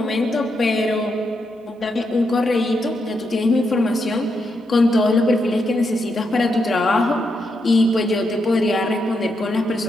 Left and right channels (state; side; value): normal; both; correlation 0.82